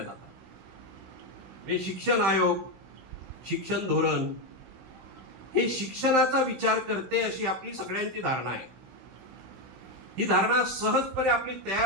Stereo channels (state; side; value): late; left; 16 ms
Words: जातात. हे शिक्षण आयोग, शिक्षण धोरण हे शिक्षणाचा विचार करते अशी आपली सगळ्यांची धारणा आहे. ही धारणा सहजपणे आपली